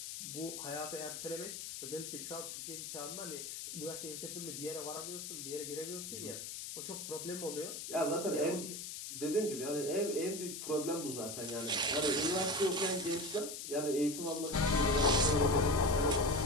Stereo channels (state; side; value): noise; left; hiss, 7 dB below the sound